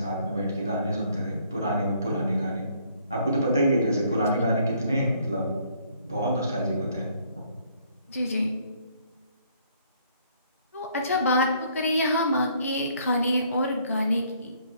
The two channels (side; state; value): both; inverted; correlation -0.65